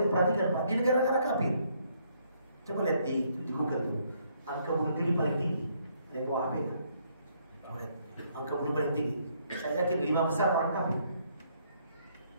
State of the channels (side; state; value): both; inverted; correlation -0.69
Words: perhatikan, Pak, di negara-negara kafir. Coba lihat di Google tuh, angka bunuh diri paling tinggi. Ada yang bawa HP kan? Angka bunuh paling tinggi. Saya yakin 5 besar orang kafir.